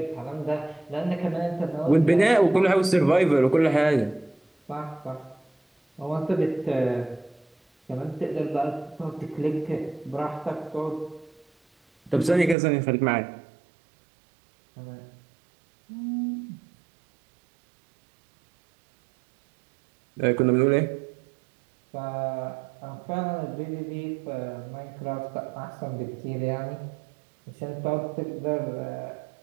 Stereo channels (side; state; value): left; drops out; at 12.6 s